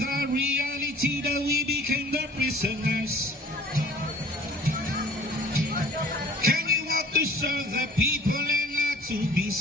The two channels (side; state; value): both; normal; correlation 0.49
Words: reality that we became the prisoners? Can you want to serve the people and not to be